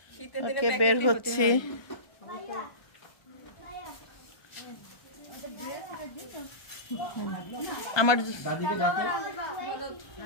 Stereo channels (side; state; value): right; late; 1.3 ms